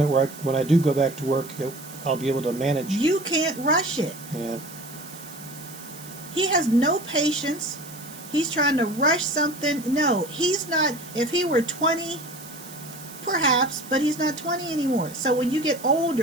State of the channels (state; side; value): noise; right; hiss, 16 dB below the sound